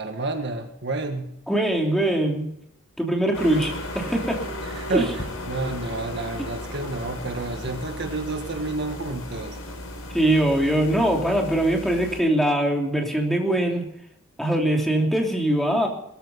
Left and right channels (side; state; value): both; normal; correlation 0.66